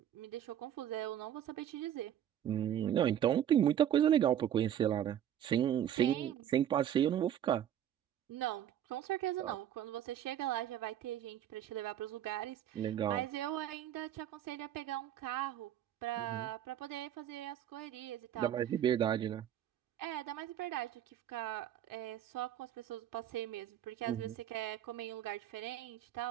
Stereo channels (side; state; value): left; quieter; 10.6 dB